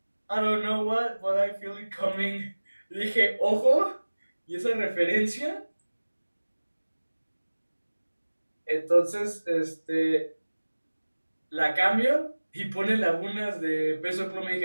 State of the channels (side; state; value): both; inverted; correlation -1.00